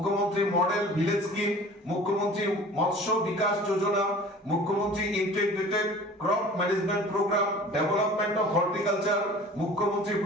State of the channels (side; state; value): both; normal; correlation 0.44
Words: মডেল ভিলেজ স্কিম, মুখ্যমন্ত্রী মৎস্য বিকাশ যোজনা, মুখ্যমন্ত্রী integrated crop management programme, development of horticulture, মুখ্যমন্ত্রী